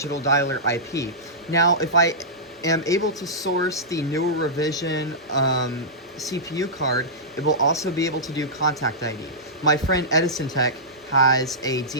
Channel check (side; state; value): both; normal; correlation -0.15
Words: dialer IP. Now, if I am able to source the newer revision CPU card, it will also be able to do contact ID. My friend Edison Tech has a